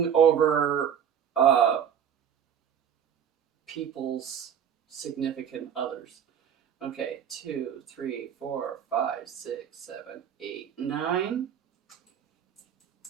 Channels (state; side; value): quieter; left; 8.5 dB